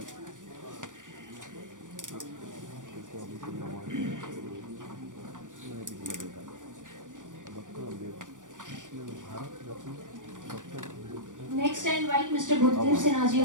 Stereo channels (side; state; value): left; late; 0.87 ms